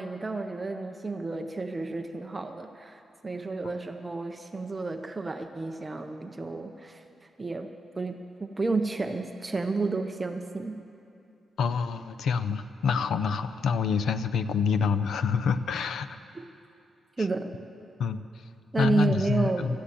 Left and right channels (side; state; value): both; normal; correlation 0.79